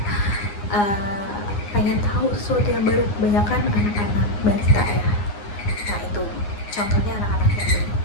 pengen tahu sesuatu yang baru, kebanyakan anak-anak balita ya. Nah itu contohnya anak-anak yang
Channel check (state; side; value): late; right; 9.8 ms